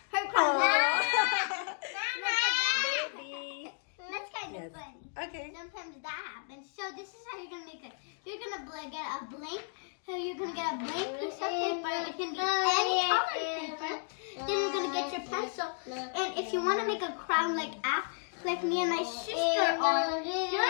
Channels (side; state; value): right; silent; 56 dB below the other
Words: Her crown. Baby. That's kind of Yes. funny. Okay. Sometimes that happens. So this is how you're gonna make it. You're gonna get a blank. So you're gonna get a blank piece of paper. It can be any color paper. Then you're gonna get your pencil. And if you want to make a crown like me and my sister are,